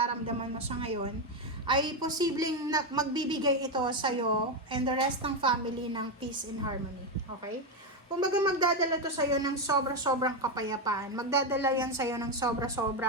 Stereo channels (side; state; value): both; normal; correlation 0.08